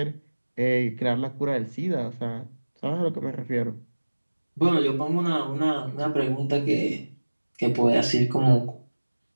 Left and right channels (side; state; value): both; inverted; correlation -1.00